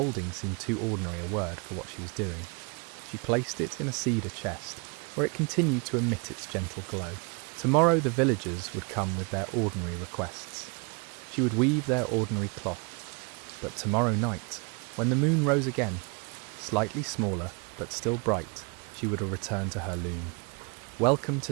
seemed too ordinary a word for what she was doing. She placed it in a cedar chest, where it continued to emit its gentle glow. Tomorrow the villagers would come with their ordinary requests. She would weave their ordinary cloth. But tomorrow night, when the moon rose again, slightly smaller but still bright, she would return to her loom. Welcome to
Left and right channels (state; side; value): quieter; left; 32.6 dB